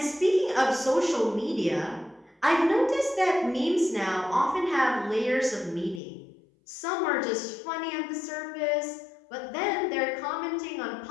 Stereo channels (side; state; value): right; drops out; at 6.0 s